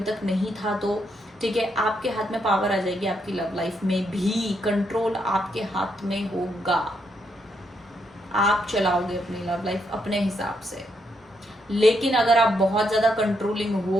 तक नहीं था तो। ठीक है, आपके हाथ में पावर आ जाएगी, आपकी लव लाइफ में भी कंट्रोल आपके हाथ में होगा। आप चलाओगे अपनी लव लाइफ अपने हिसाब से। लेकिन अगर आप बहुत ज्यादा कंट्रोलिंग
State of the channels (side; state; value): both; normal; correlation 0.78